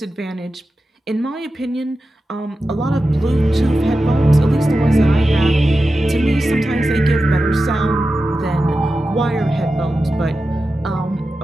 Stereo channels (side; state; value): both; normal; correlation 0.92